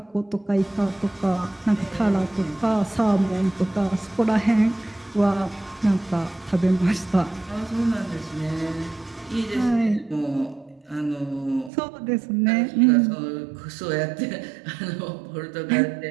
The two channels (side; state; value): left; drops out; at 11.7 s